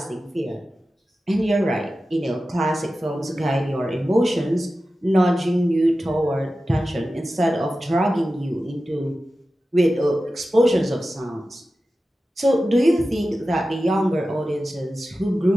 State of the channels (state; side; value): normal; both; correlation 0.94